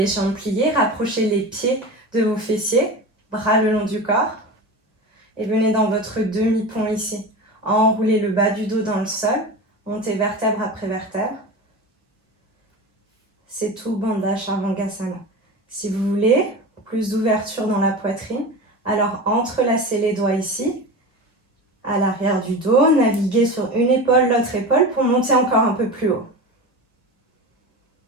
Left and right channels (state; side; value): normal; both; correlation 0.28